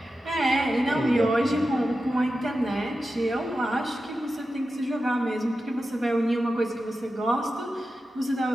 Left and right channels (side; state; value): both; normal; correlation 0.91